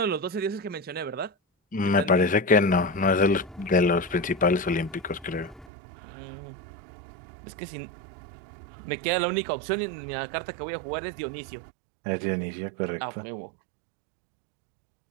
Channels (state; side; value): drops out; left; at 5.7 s